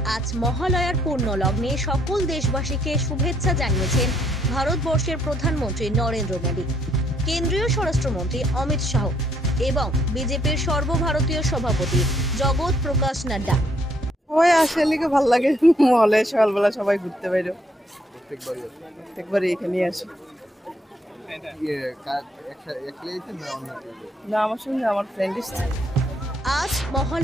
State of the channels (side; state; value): both; normal; correlation 0.70